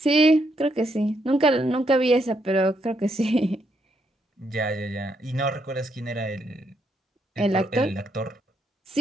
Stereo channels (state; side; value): normal; both; correlation 0.76